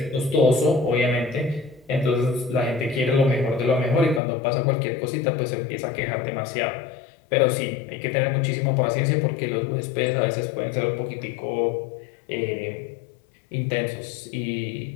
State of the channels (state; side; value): drops out; right; at 4.2 s